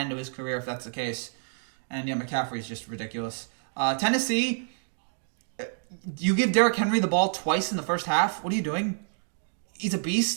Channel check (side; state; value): left; silent; digital silence